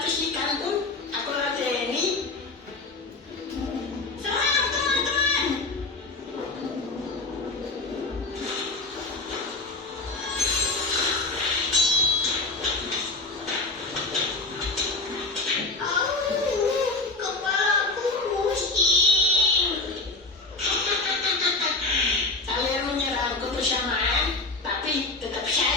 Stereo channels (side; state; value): right; quieter; 3.3 dB